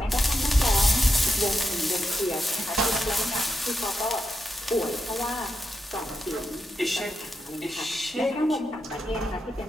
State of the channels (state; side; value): normal; both; correlation 0.85